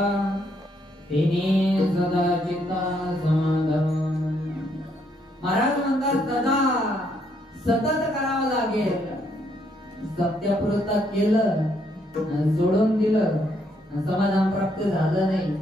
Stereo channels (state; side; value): normal; both; correlation 0.72